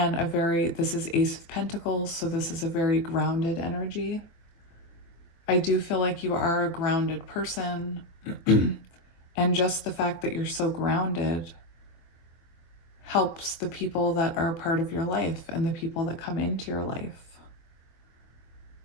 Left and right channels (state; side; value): late; right; 23 ms